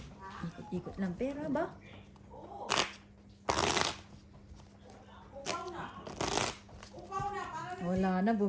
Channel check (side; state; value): both; identical; correlation 1.00